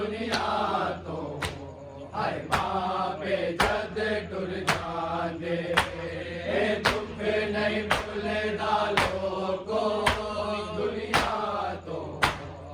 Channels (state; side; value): identical; both; correlation 1.00